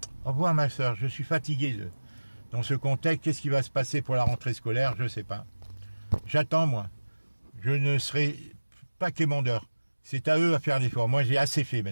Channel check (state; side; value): inverted; both; correlation -1.00